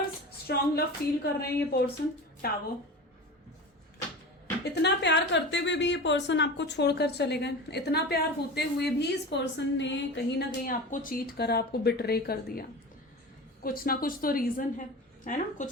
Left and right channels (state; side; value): normal; both; correlation 0.31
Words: स्ट्रॉन्ग लव फील कर रहे हैं ये पर्सन, टावर, इतना प्यार करते हुए भी ये पर्सन आपको छोड़कर चले गए, इतना प्यार होते हुए भी इस पर्सन ने कहीं ना कहीं आपको चीट करा, आपको बिट्रे कर दिया, कुछ ना कुछ तो रीजन है ना,